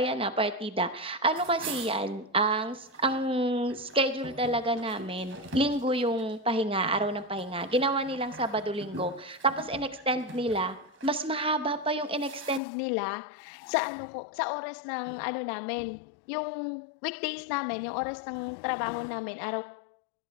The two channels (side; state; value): right; drops out; at 12.6 s